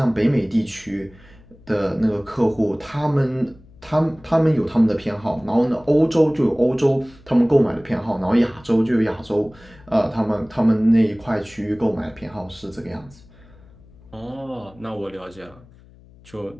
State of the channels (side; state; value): left; noise; hum, 25 dB below the sound